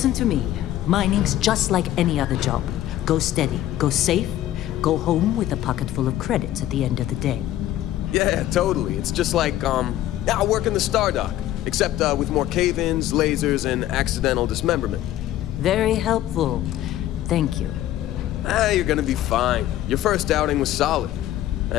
to me. Mining's just like any other job. Go steady, go safe, go home with a pocket full of credits at the end of the day. Yeah, totally. It's just like, I work in the Star Dock. Except with more cave-ins, lasers, and accidental dismemberment. Very helpful. Thank you. You're gonna be fine. Your first outing was solid.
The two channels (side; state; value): right; quieter; 13.3 dB